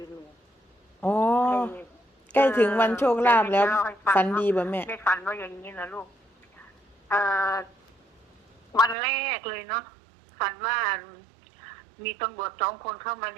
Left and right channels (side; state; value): left; drops out; at 9.0 s